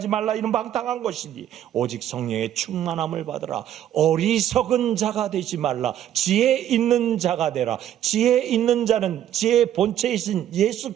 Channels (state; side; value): quieter; left; 11.2 dB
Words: 말라. 이는 방탕한 것이니 오직 성령의 충만함을 받으라. 어리석은 자가 되지 말라. 지혜 있는 자가 되라. 지혜 있는 자는 지혜의 본체이신 예수